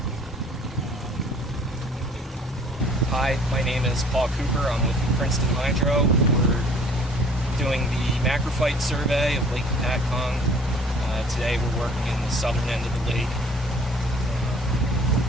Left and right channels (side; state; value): both; normal; correlation 0.53